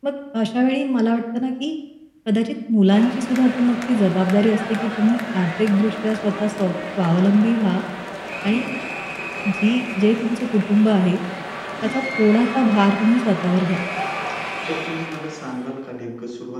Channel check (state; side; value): identical; both; correlation 1.00